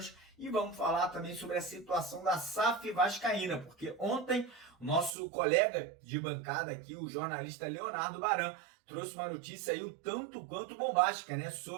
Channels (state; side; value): drops out; left; at 5.2 s